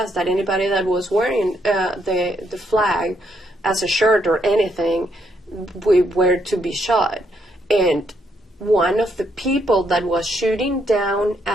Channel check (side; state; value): both; normal; correlation 0.74